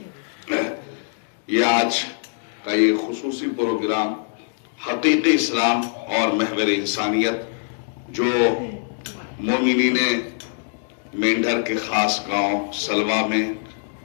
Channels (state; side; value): silent; right; digital silence